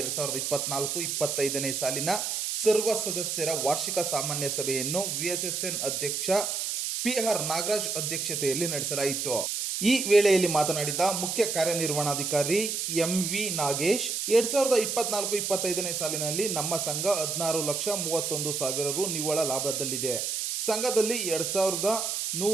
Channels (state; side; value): noise; right; hiss, 1 dB below the sound